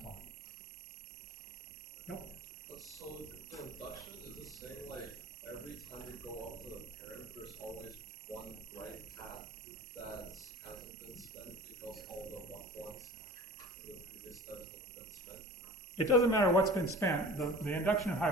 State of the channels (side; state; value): both; normal; correlation 0.40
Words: 1. Yep. So the induction is the same, like every time you go up to the parent, there's always one right path that hasn't been spent because all the ones in the previous steps have been spent. It doesn't matter what's been spent. The inductive